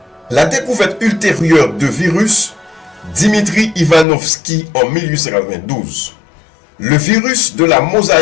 La découverte ultérieure de virus, Dimitri Ivanovski en 1892. Le virus de la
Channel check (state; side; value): drops out; right; at 4.0 s